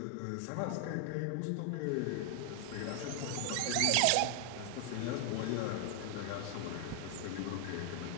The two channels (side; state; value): both; different; correlation 0.00